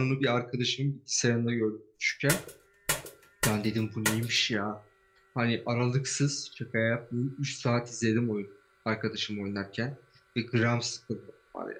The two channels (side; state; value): both; identical; correlation 1.00